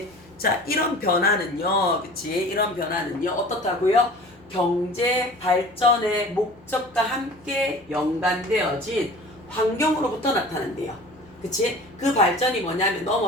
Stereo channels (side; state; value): both; normal; correlation 0.42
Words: 자, 이런 변화는요. 그치? 이런 변화는요. 어떻다고요? 경제 발전의 목적과 함께 연관되어진 환경으로부터 나타난대요. 그치? 그 발전이 뭐냐면